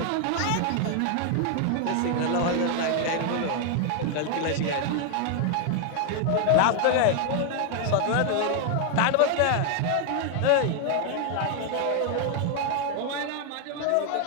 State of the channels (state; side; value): different; both; correlation 0.00